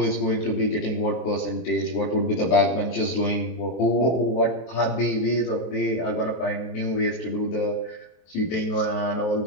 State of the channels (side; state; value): right; late; 23 ms